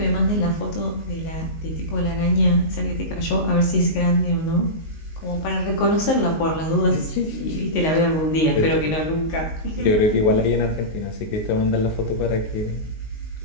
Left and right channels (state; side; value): late; right; 19 ms